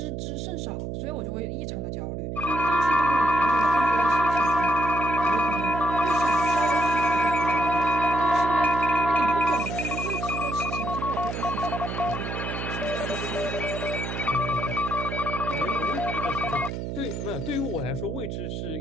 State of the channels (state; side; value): noise; right; hum, 5 dB below the sound